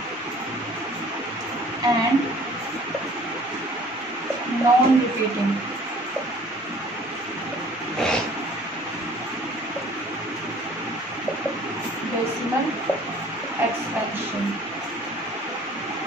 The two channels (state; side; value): normal; both; correlation 0.52